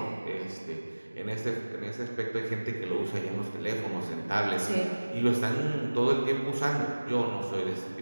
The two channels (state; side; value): inverted; both; correlation -1.00